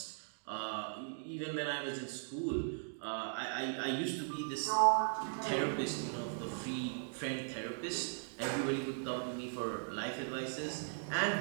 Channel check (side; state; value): left; silent; digital silence